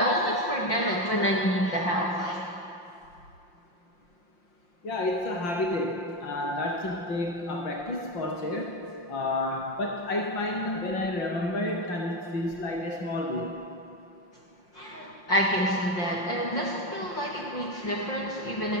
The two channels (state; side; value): late; right; 5.7 ms